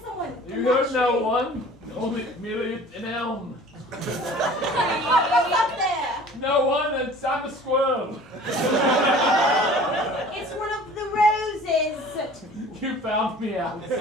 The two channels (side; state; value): both; normal; correlation 0.46